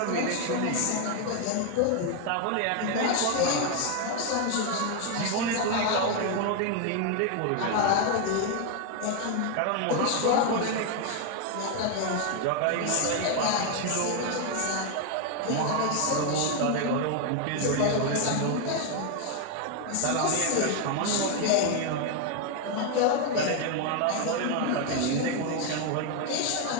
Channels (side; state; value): both; different; correlation 0.01